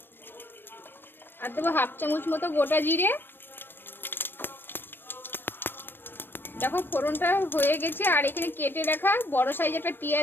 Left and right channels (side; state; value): right; late; 0.097 ms